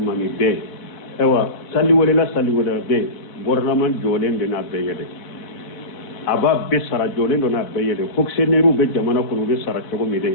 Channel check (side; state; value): right; late; 4.1 ms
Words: be ewa salli wala be bornaman jolen de na be yede aba be sara jole do na be yede fonctionnaire be jamana ko be sara to mi